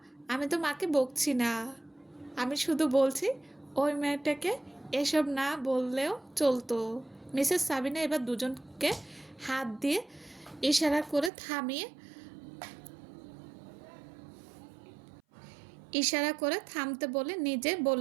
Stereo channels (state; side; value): drops out; left; at 11.3 s